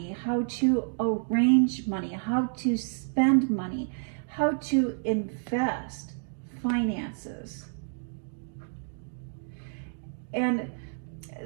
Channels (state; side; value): silent; left; digital silence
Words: how to arrange money, how to spend money, how to invest finances. And